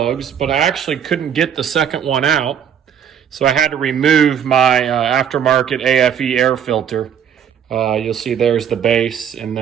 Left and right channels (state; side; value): quieter; left; 8.5 dB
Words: but I actually couldn't get the second one out. So I had to remove my aftermarket AFE air filter. You'll see there's the base and